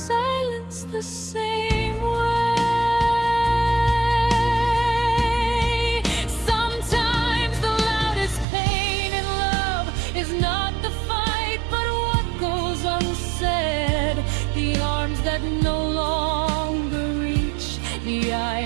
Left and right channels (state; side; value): drops out; left; at 8.5 s